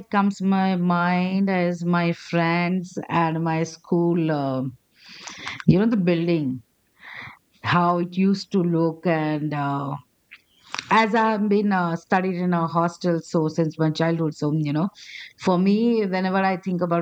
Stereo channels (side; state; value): both; identical; correlation 1.00